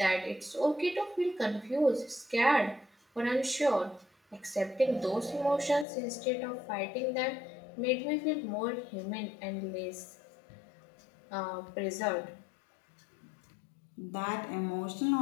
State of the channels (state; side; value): drops out; right; at 5.9 s